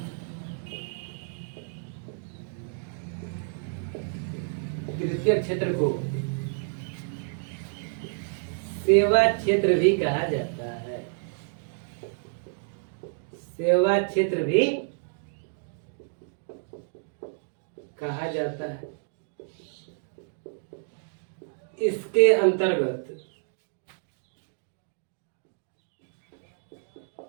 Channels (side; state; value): left; silent; digital silence